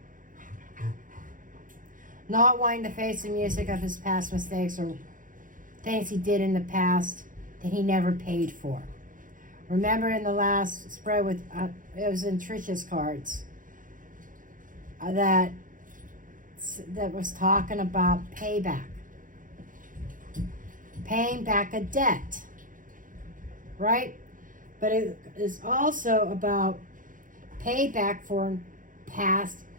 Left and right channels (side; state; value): left; late; 0.39 ms